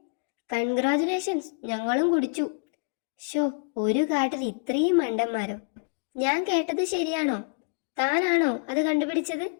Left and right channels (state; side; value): quieter; right; 39.4 dB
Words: കൺഗ്രാജുലേഷൻസ്, ഞങ്ങളും കുടിച്ചു. ഒരു കാട്ടിൽ ഇത്രയും മണ്ടന്മാരോ? ഞാൻ കേട്ടത് ശരിയാണോ? താനാണോ അത് കണ്ടുപിടിച്ചത്?